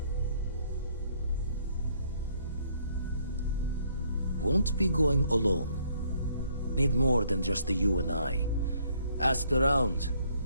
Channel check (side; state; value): both; inverted; correlation -0.66